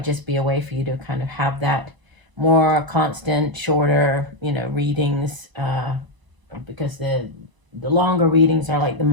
just be a way for you to kind of have that more constant, shorter, readings, because the longer readings are like the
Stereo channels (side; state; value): left; late; 1.0 ms